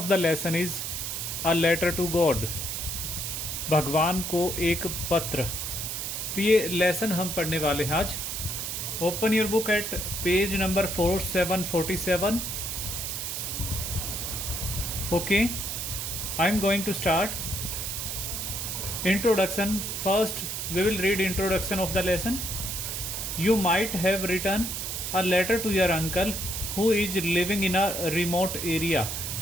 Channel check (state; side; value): noise; right; hiss, 4 dB below the sound